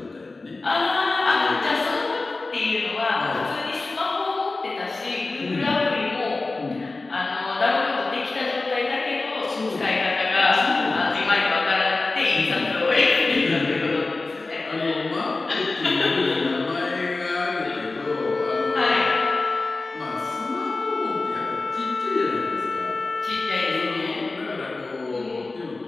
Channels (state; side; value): quieter; right; 3.4 dB